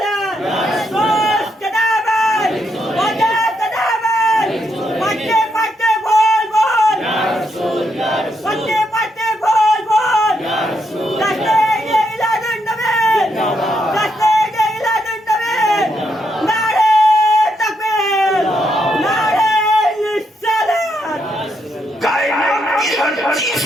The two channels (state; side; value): normal; both; correlation 0.79